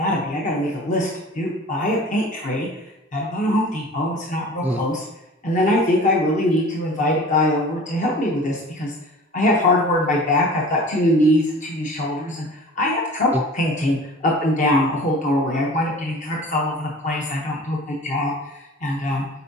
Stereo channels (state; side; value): normal; both; correlation 0.42